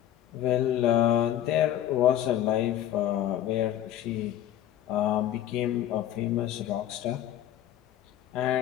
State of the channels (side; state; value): right; quieter; 11.7 dB